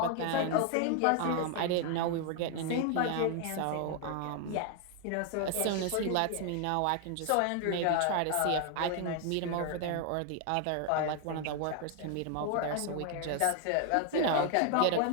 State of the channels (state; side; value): different; both; correlation 0.00